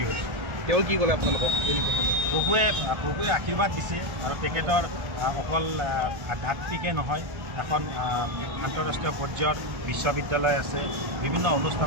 হৈছোঁ তেওঁ কি ক'লে আপোনালোকক প্ৰভুৱে আশীৰ্বাদ দিছে আৰু তেখেতৰ অকল আধ্যাত্মিকে নহয় এখন আন্তঃৰাষ্ট্ৰীয় পৰ্যায়ৰ বিশ্ববিদ্যালয় আছে বিভিন্ন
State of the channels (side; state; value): left; late; 1.3 ms